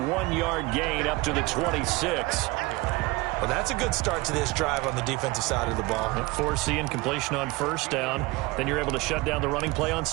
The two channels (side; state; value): left; quieter; 22.4 dB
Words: gain up to the 26. Well, that's a good start to this drive on the defensive side of the ball. Force the incompletion on first down. Then you're able to shut down the running play on